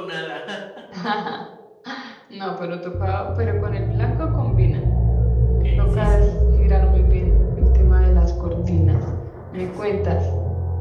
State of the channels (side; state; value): both; identical; correlation 1.00